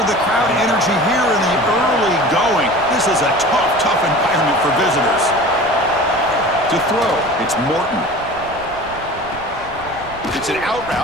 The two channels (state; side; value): noise; right; rumble, 18 dB below the sound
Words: the crowd energy here in the early going. This is a tough environment for visitors. To throw, it's Morton. It's an out